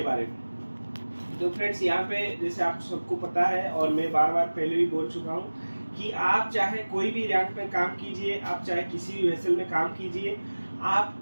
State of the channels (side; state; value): both; inverted; correlation -1.00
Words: बारे में। तो फ्रेंड्स, यहाँ पे जैसे आप सबको पता है और मैं बार बार पहले भी बोल चुका हूँ कि आप चाहे कोई भी रैंक में काम कीजिए, आप चाहे किसी भी वेसल में काम कीजिए, आप